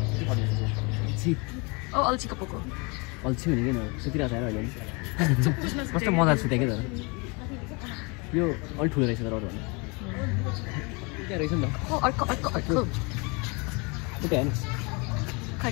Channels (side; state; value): right; quieter; 30.2 dB